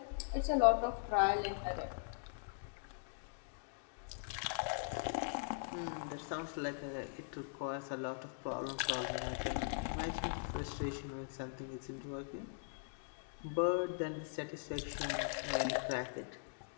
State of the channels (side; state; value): right; silent; digital silence